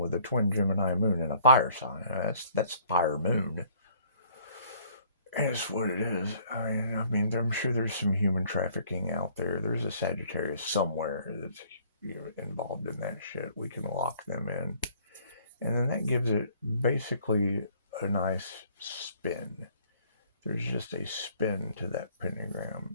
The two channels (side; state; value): both; inverted; correlation -0.58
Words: a twin Gemini moon and a fire sign. That's fire moon. And it's what it is. I mean, I'm sure there's some human trafficking out there. There's a Sagittarius somewhere that's involved in that shit. We can lock them in, and then that gives it basically a nice spin. There's just a spin to that